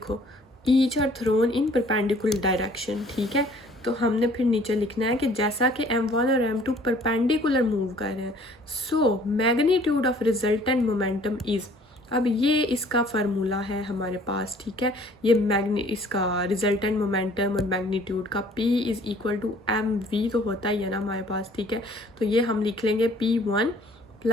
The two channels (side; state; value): both; normal; correlation 0.56